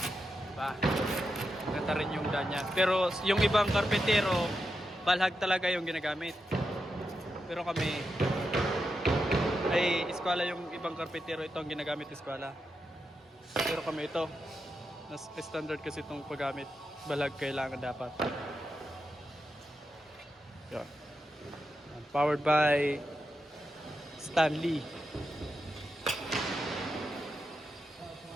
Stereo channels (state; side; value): normal; both; correlation 0.87